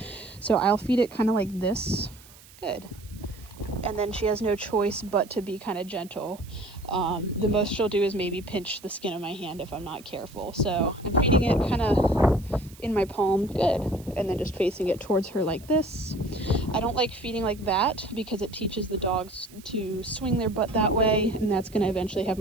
So I'll feed it kind of like this. Good. And then she has no choice but to be kind of gentle. The most she'll do is maybe pinch the skin of my hand if I'm not careful. So I'm feeding it kind of in my palm. Good. And then just facing it towards her like this. I don't like feeding like that because it teaches the dogs to swing their butt that way, and that's going to eventually have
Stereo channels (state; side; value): noise; right; hiss, 23 dB below the sound